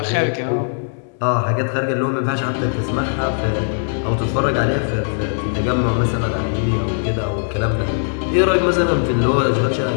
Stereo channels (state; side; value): silent; right; digital silence